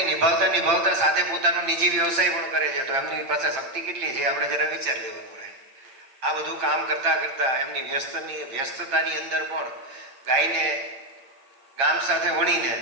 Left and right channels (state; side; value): late; left; 8.8 ms